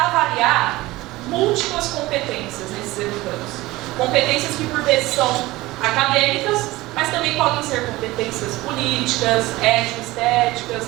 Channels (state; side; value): quieter; left; 19.1 dB